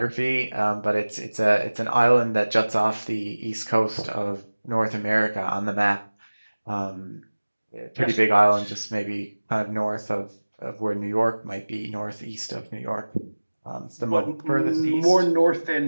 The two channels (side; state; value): both; inverted; correlation -1.00